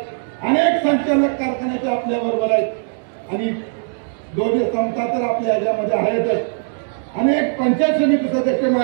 अनेक संचालक कारखान्याचे आपल्याबरोबर आहेत आणि दोन्ही संस्था तर आपल्या ह्याच्यामध्ये आहेतच. अनेक पंचायत समिती सदस्य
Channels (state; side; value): silent; left; digital silence